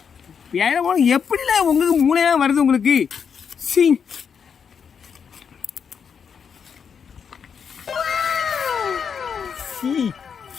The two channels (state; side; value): quieter; right; 6.8 dB